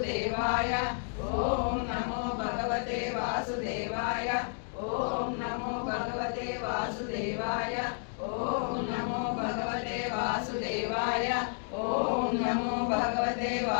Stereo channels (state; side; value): silent; right; 57 dB below the other